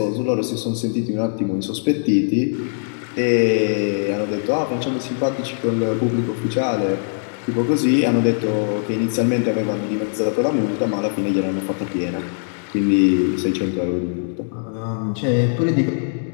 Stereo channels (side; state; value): right; silent; digital silence